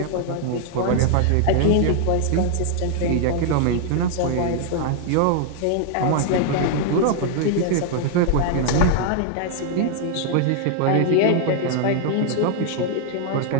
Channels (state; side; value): different; both; correlation 0.00